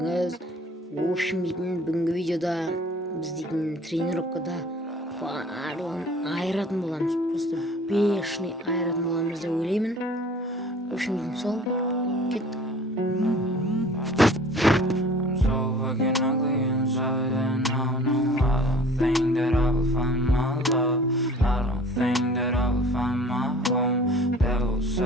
бүгінгі видеода біз дейтін тренировкада барлығын айыратын боламыз. Просто бешеный айыратын боламыз деп ойлаймын. Сол, кеттік.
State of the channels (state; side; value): normal; both; correlation 0.48